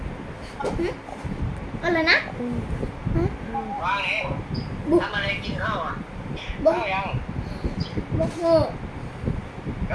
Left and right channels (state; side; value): identical; both; correlation 1.00